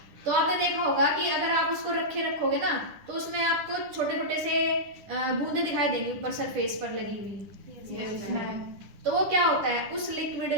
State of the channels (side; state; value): left; late; 10 ms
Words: तो आपने देखा होगा कि अगर आप उसको रखोगे ना, तो उसमें आपको छोटे छोटे से बूंदे दिखाई देंगी ऊपर सरफेस पर लगी हुई। तो वो क्या होता है, उस